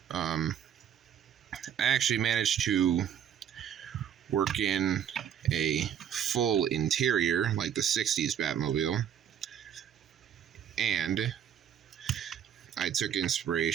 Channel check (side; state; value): left; quieter; 9.0 dB